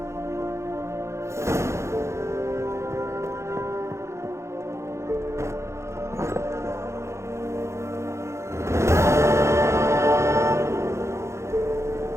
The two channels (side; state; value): left; late; 0.14 ms